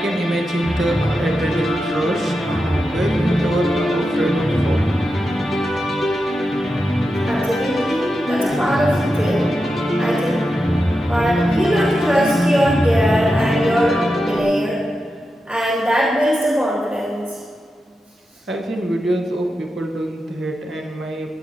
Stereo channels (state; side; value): normal; both; correlation 0.89